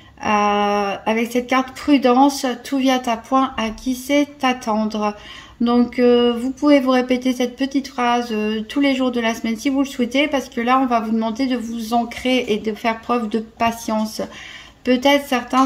avec cette carte prudence, tout vient à point, à qui c'est attendre. Donc vous pouvez vous répéter cette petite phrase tous les jours de la semaine si vous le souhaitez, parce que là on va vous demander de vous ancrer et de faire preuve de patience. Peut-être certains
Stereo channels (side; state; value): both; identical; correlation 1.00